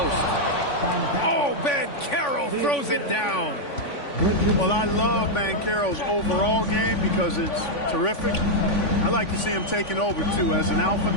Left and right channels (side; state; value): right; late; 3.5 ms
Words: Oh, Banchero throws it down. Well, I love Banchero's overall game because it's terrific. I like to see him taking over, too. As an alpha